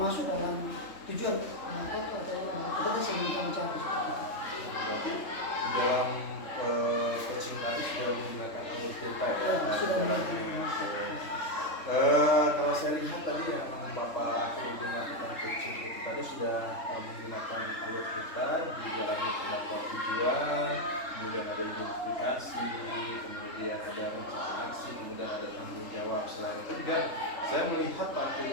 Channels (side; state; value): right; late; 3.3 ms